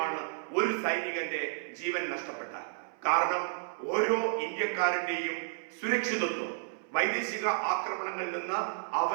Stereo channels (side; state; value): left; silent; 56 dB below the other